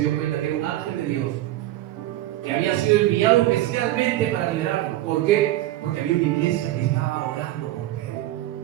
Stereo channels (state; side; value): quieter; left; 15.2 dB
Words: dio cuenta que era un ángel de Dios que había sido enviado especialmente para liberarlo. ¿Por qué? Porque había una iglesia que estaba orando por Pedro.